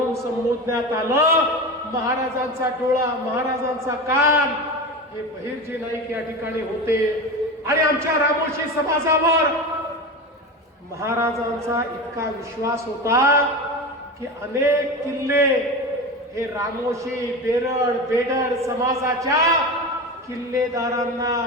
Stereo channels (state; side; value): normal; both; correlation 0.25